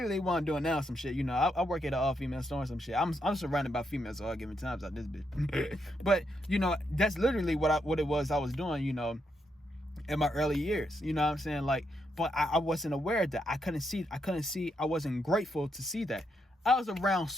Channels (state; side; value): normal; both; correlation 0.80